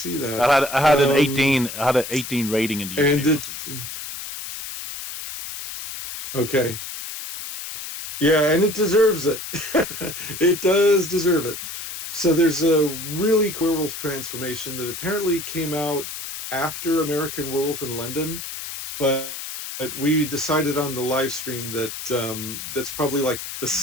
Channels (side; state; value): left; noise; hiss, 8 dB below the sound